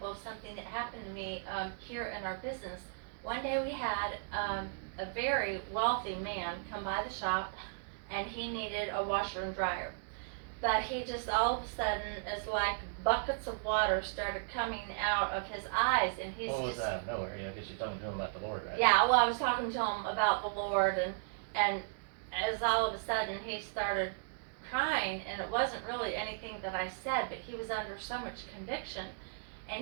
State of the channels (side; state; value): left; silent; digital silence